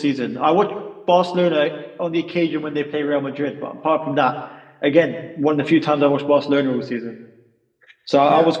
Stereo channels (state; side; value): identical; both; correlation 1.00